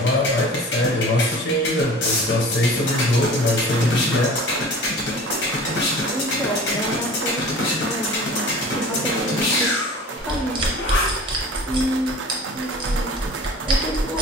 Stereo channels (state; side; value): normal; both; correlation 0.41